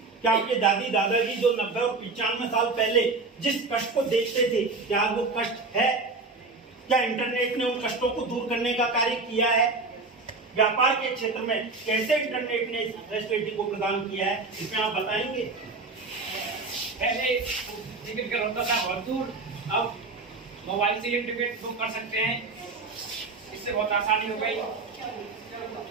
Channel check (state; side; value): quieter; left; 3.7 dB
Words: क्या आपके दादी दादाजी जो 90 और 95 साल पहले जिस कष्ट को देखते थे, क्या वो कष्ट है? क्या इंटरनेट ने उन कष्टों को दूर करने का कार्य किया है? व्यापार के क्षेत्र में कैसे इंटरनेट ने इस फैसिलिटी को प्रदान किया है, इसमें आप बताएंगे? पहले टिकट का होता था बहुत दूर, अब मोबाइल से ही टिकट बुक कर सकते हैं, इससे बहुत आसानी हो गई।